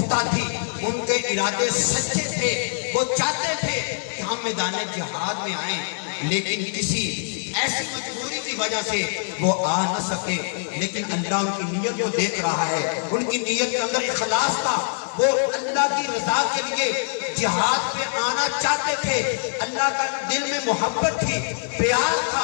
تھی، ان کے ارادے سچے تھے، وہ چاہتے تھے کہ ہم میدان جہاد میں آئیں، لیکن کسی ایسی مجبوری کی وجہ سے وہ آ نہ سکے۔ لیکن اللہ ان کی نیت کو دیکھ رہا ہے، ان کی نیت کے اندر اخلاص تھا، وہ اللہ کی رضا کے لیے جہاد پہ آنا چاہتے تھے، اللہ کا دل میں محبت تھی، پیار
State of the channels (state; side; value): silent; right; 63 dB below the other